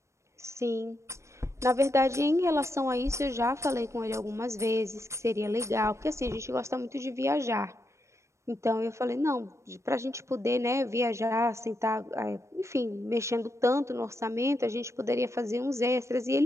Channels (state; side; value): late; left; 0.14 ms